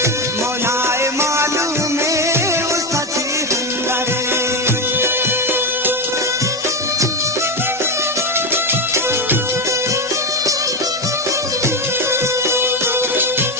मौलाए मालूम है उसका जी अंदरे।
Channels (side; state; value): both; normal; correlation 0.12